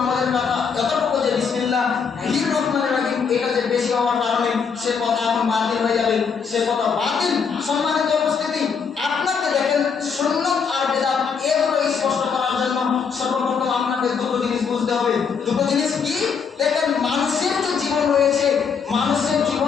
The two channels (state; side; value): quieter; right; 6.1 dB